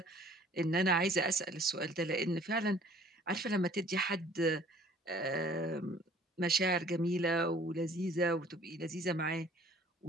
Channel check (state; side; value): normal; both; correlation 0.53